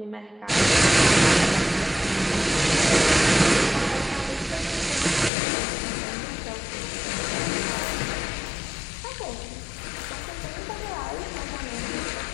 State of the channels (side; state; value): right; drops out; at 5.3 s